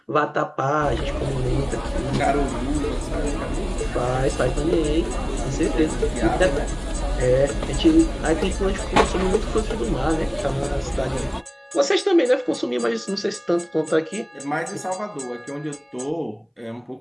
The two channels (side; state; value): both; identical; correlation 1.00